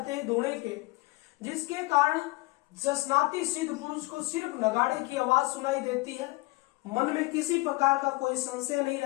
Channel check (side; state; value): right; quieter; 22.7 dB